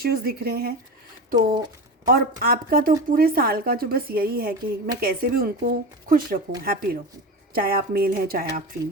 दिख रहे हैं। तो और आपका तो पूरे साल का जो बस यही है कि मैं कैसे भी उनको खुश रखूं, हैप्पी रखूं, चाहे आप मेल हैं चाहे आप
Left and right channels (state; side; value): normal; both; correlation 0.25